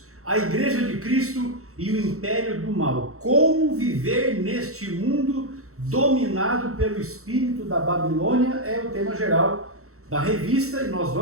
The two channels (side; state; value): left; late; 0.64 ms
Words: a Igreja de Cristo e o Império do Mal. Como viver neste mundo dominado pelo espírito da Babilônia é o tema geral da revista e nós